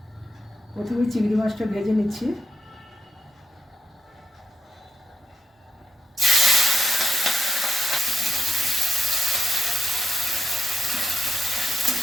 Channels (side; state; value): both; normal; correlation 0.85